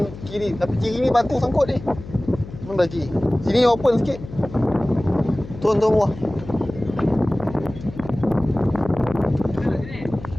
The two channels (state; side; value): noise; left; hum, 14 dB below the sound